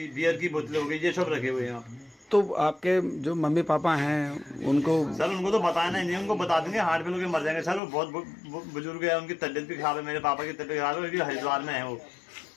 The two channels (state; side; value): drops out; right; at 7.8 s